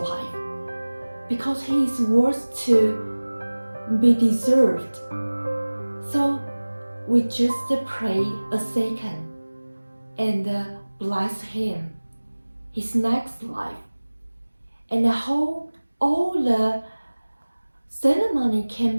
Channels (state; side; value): inverted; both; correlation -1.00